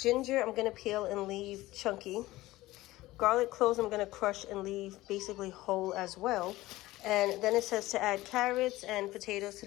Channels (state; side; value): quieter; right; 17.8 dB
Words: I'm going to peel and leave chunky. Garlic cloves I'm going to crush and leave basically whole as well. And then it says to add carrots and potatoes to